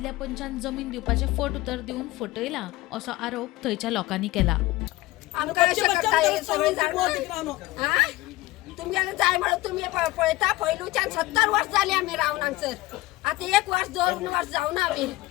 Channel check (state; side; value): quieter; right; 18.9 dB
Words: पंचान जमीन दिवपाचे फट उतर दिवन फटयला असो आरोप थंयच्या लोकांनी केला। आमकां अशें करता हे सगळे जाण हा तुमगेले जाय म्हणून तुम्ही पळयता पयलूच्यान 70 वर्ष जाली आमी रावन हांगसर आता 1 वर्ष 2 वर्ष जावन आमी